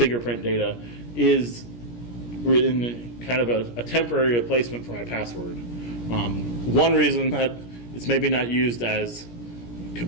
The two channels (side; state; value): right; late; 17 ms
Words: data, is in kind of a temporary replacement for my password. One reason that it's maybe not used as